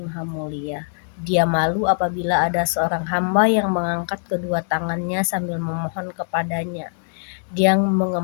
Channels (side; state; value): right; silent; 64 dB below the other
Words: maha mulia. Dia malu apabila ada seorang hamba yang mengangkat kedua tangannya sambil memohon kepadanya. Dia